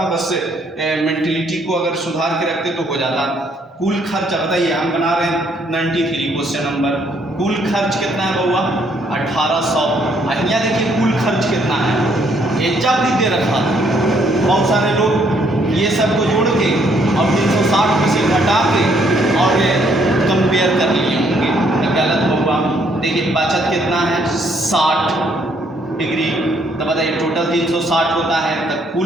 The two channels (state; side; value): normal; both; correlation 0.68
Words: बस मेंटलिटी को अगर सुधार के रखते तो हो जाता। कुल खर्च बताइए, हम बना रहे हैं 93 क्वेश्चन नंबर। कुल खर्च कितना है बउआ? 1800। यहाँ देखिए कुल खर्च कितना है, एजा भी दे रखा था। बहुत सारे लोग ये सब को जोड़ के और 360 में से घटा के और कंपेयर कर लिए होंगे, तो गलत होगा। देखिए बचत कितना है? 60 डिग्री। तो बताइए टोटल 360 होता है, तो